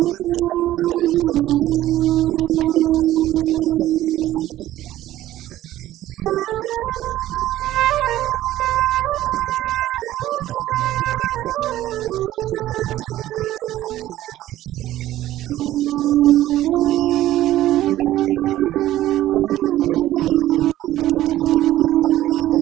got a strategic plan that we want to execute which includes a learning center and a e-learning center for the children. It includes lots of creative activities for them to get involved in, acting, drama, and various other things. Most of the funding and the well-being and the daily upkeep has been through family and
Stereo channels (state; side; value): quieter; left; 14.2 dB